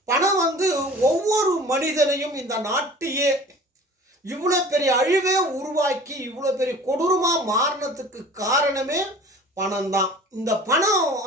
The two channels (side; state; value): both; normal; correlation 0.43